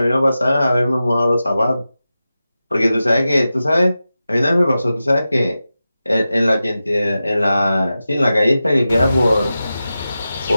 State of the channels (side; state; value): both; inverted; correlation -0.93